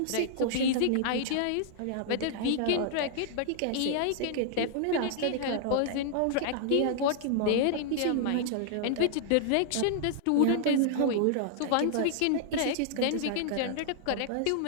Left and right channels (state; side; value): different; both; correlation -0.01